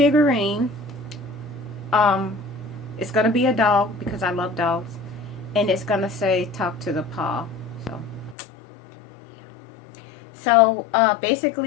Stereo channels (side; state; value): right; drops out; at 8.3 s